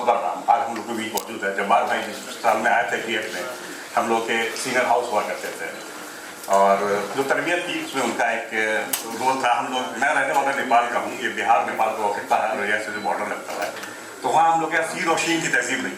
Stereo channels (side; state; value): both; identical; correlation 1.00